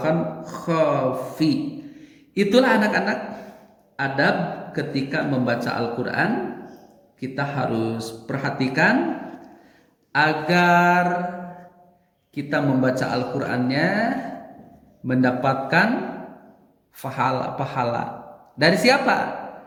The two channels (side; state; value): both; identical; correlation 1.00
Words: khafi. Itulah anak-anak adab ketika membaca Al-Quran. Kita harus perhatikan agar kita membaca Al-Qurannya mendapatkan pahala. Dari siapa?